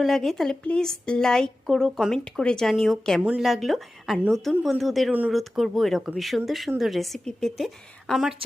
লাগে তাহলে প্লিজ লাইক করো, কমেন্ট করে জানিও কেমন লাগলো। আর নতুন বন্ধুদের অনুরোধ করব এরকমই সুন্দর সুন্দর রেসিপি পেতে আমার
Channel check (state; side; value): normal; both; correlation 0.95